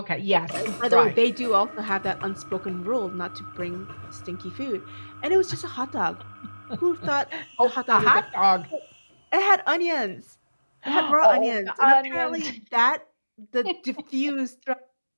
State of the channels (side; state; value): both; inverted; correlation -1.00